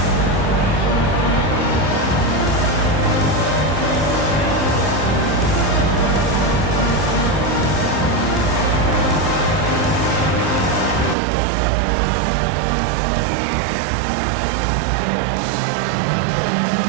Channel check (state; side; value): drops out; left; at 11.2 s